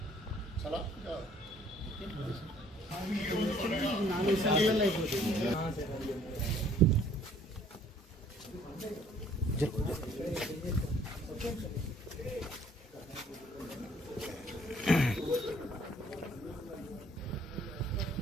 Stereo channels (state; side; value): normal; both; correlation 0.59